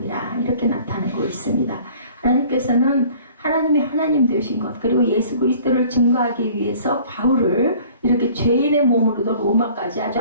이렇게 나타나고 있습니다. 하나님께서는 하나님이 하나님 되신 것 그리고 예수 그리스도를 증거하기 위해서 바울을 이렇게 죄인의 몸으로도 로마까지 아주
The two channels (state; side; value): inverted; both; correlation -0.51